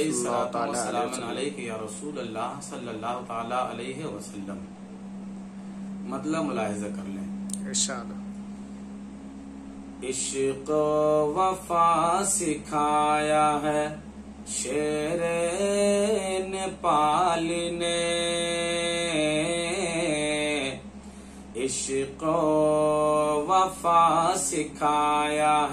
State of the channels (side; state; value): both; identical; correlation 1.00